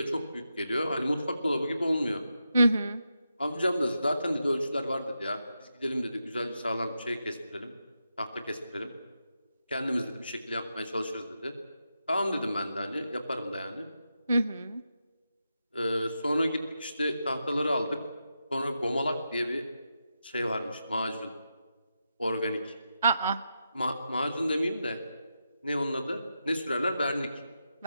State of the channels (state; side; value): inverted; both; correlation -0.87